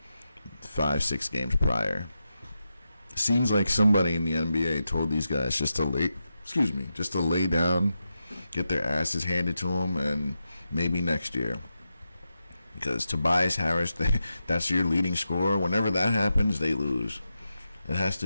5, 6 games prior. Seems like somebody in the NBA told these guys just to lay down, get their asses handed to them, and maybe next year. Because Tobias Harris, that's your leading scorer. Whenever that happens, they lose. It has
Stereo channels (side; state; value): both; inverted; correlation -0.88